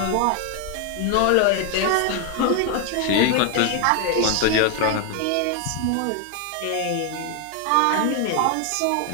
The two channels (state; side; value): different; both; correlation 0.01